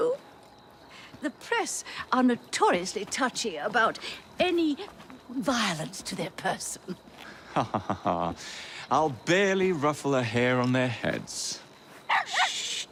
The press are notoriously touchy about any violence to their person. Ha ha ha ha. I'll barely ruffle a hair on their heads. Shh,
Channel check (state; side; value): identical; both; correlation 1.00